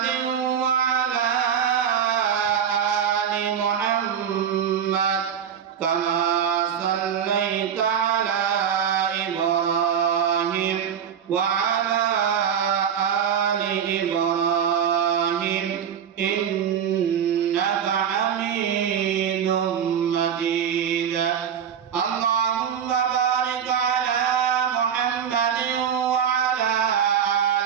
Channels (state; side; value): quieter; left; 8.2 dB